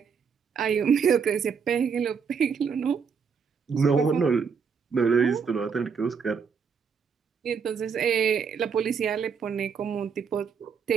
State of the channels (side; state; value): left; quieter; 6.2 dB